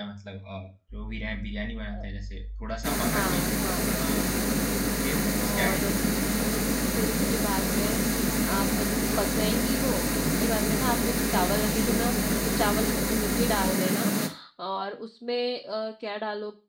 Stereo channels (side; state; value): both; identical; correlation 1.00